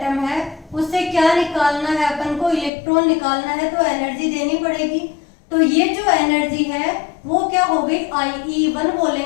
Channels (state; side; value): drops out; right; at 2.7 s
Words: है, उससे क्या निकालना है अपन को इलेक्ट्रॉन निकालना है तो एनर्जी देनी पड़ेगी। तो ये जो एनर्जी है वो क्या हो गई IE1